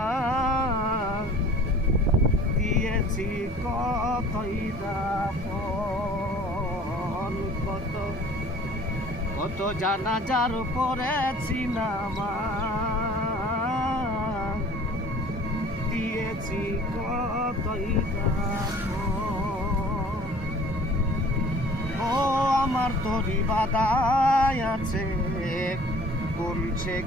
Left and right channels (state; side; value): normal; both; correlation 0.49